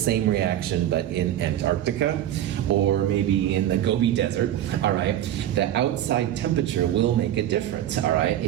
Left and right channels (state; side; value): quieter; left; 11.9 dB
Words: reaction but in Antarctica or maybe in the Gobi Desert, all right, the outside temperature will make a difference, all right?